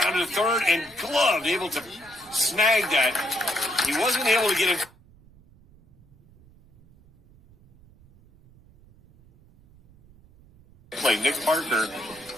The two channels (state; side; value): noise; right; rumble, 27 dB below the sound